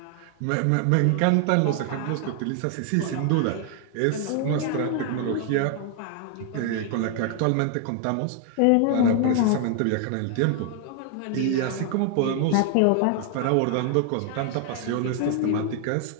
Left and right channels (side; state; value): both; different; correlation 0.00